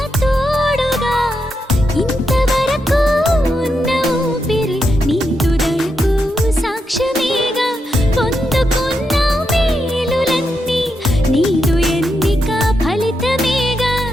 తోడుగా ఇంతవరకు ఉన్న ఊపిరి నీదు దయకు సాక్ష్యమేగా పొందుకున్న మేలులన్నీ నీదు ఎన్నిక ఫలితమేగా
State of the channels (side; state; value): both; normal; correlation 0.84